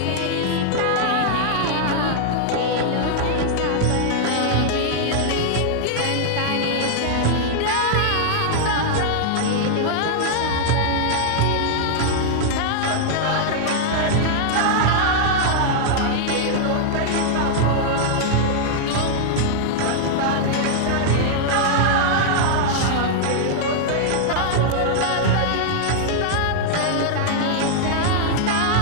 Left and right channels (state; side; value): different; both; correlation -0.01